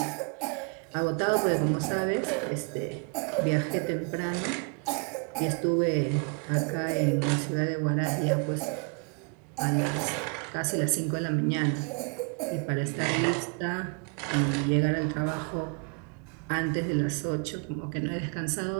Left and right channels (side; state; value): left; quieter; 37.7 dB